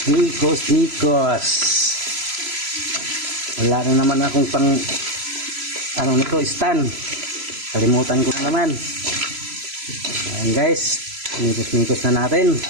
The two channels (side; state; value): left; late; 3.0 ms